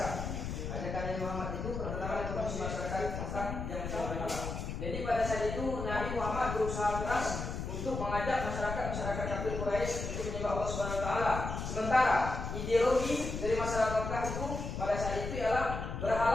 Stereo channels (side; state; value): left; noise; rumble, 5 dB below the sound